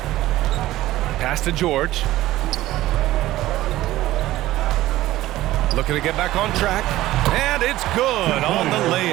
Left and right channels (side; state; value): left; quieter; 15.8 dB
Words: Pass to George. Looking to get back on track. And it's good on the